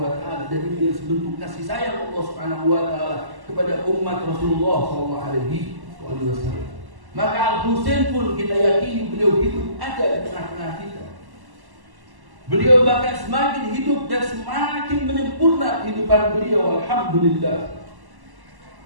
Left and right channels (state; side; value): late; left; 1.1 ms